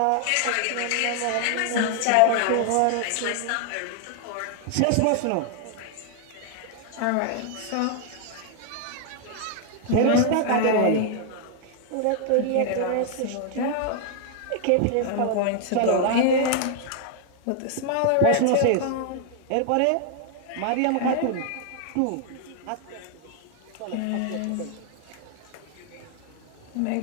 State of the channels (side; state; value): both; different; correlation 0.00